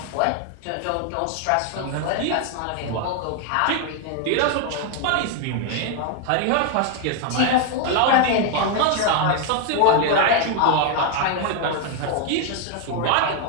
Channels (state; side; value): different; both; correlation 0.01